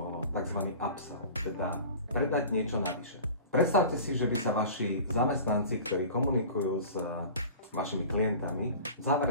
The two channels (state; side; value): inverted; both; correlation -0.39